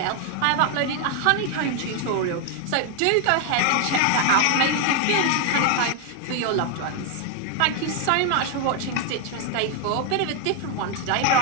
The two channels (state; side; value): different; both; correlation 0.01